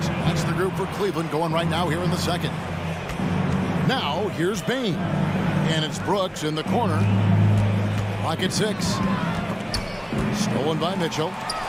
That's the group for Cleveland going right now here in the second. Now, here's Bain, and it's Brooks in the corner. Clock at 6. Stolen by Mitchell.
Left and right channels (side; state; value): both; identical; correlation 1.00